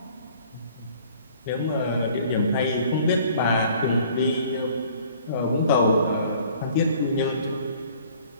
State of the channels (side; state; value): both; inverted; correlation -0.54